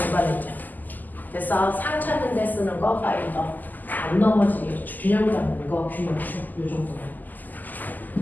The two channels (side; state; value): right; late; 0.084 ms